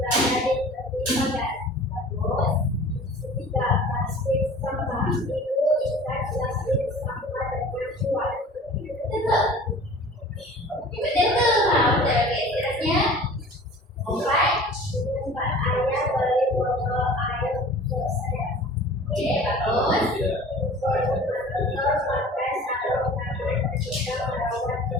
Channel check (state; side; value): normal; both; correlation 0.43